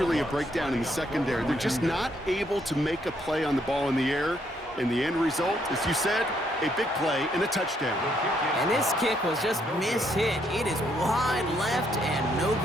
a breakdown in the secondary. They're just not able to make a play on the ball in the air. And the end result, as you said, a big play and a touchdown. And this kick was just mishit. It is wide left and no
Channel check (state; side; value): normal; both; correlation 0.72